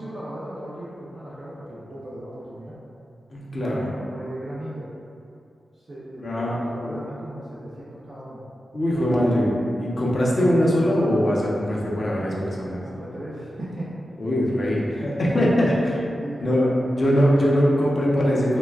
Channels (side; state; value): both; normal; correlation 0.91